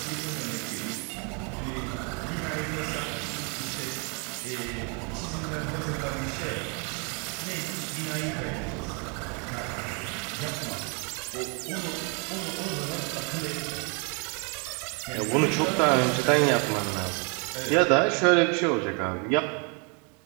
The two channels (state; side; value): quieter; left; 35.2 dB